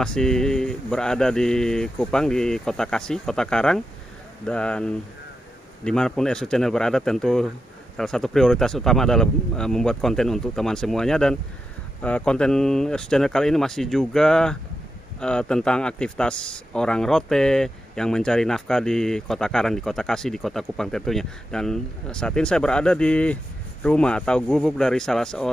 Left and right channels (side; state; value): both; normal; correlation 0.88